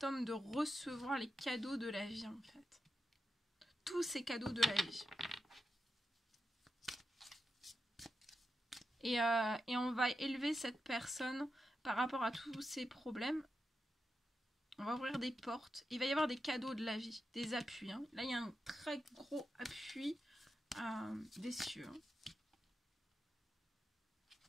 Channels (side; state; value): both; normal; correlation 0.88